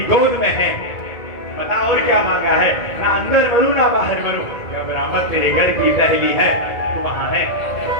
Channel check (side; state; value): right; late; 2.1 ms